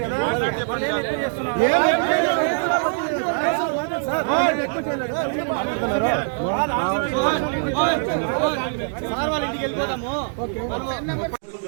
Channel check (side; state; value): left; silent; digital silence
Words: కదా. సార్ వాళ్ళ ఇంటికి వెళ్ళిపోతాము.